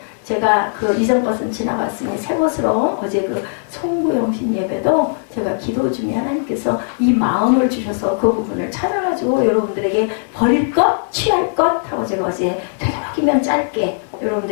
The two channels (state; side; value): silent; right; digital silence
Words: 제가 이전 것은 지나갔으니 새 것으로 어제 송구영신 예배도 제가 기도 중에 하나님께서 이 마음을 주셔서 그 부분을 찾아가지고 여러분들에게 버릴 것, 취할 것 하고 제가 어제 되도록이면 짧게